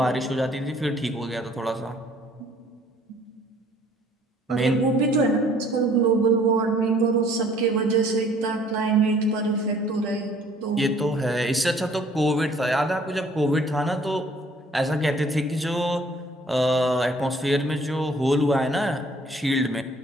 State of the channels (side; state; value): both; normal; correlation 0.57